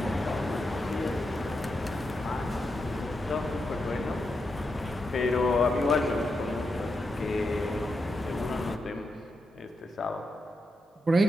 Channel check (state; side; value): normal; both; correlation 0.86